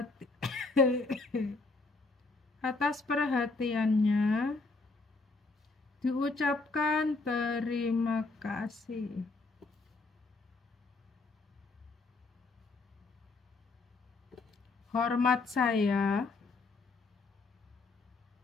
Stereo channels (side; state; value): right; quieter; 3.6 dB